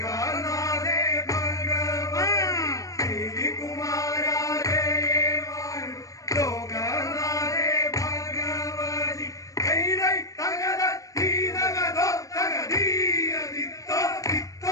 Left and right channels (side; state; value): right; late; 0.16 ms